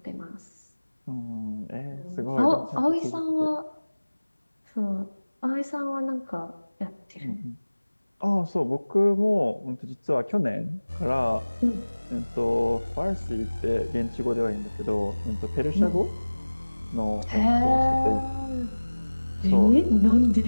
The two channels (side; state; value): both; inverted; correlation -1.00